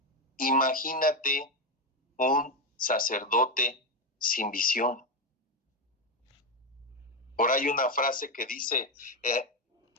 Imagínate un sacerdote sin visión. Por ahí una frase que dice,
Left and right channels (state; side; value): normal; both; correlation 0.09